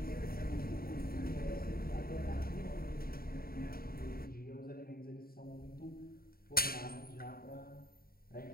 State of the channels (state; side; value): late; right; 0.43 ms